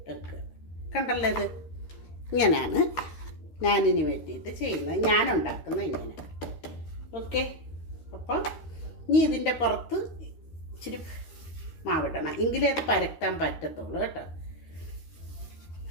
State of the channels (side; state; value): right; late; 13 ms